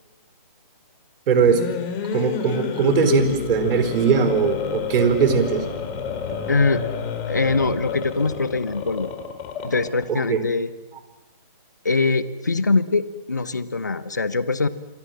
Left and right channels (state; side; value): inverted; both; correlation -0.31